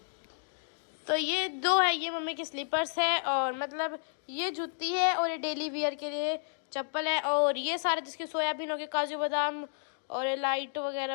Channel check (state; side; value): silent; right; digital silence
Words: तो ये 2 है, ये मम्मी की स्लीपर्स है, और मतलब ये जूती है, और ये डेली वियर के लिए चप्पल है, और ये सारे जिसके सोयाबीन हो गए, काजू बादाम और ये लाइट